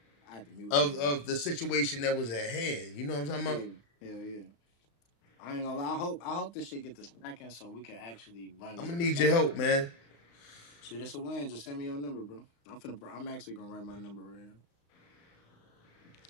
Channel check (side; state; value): right; late; 35 ms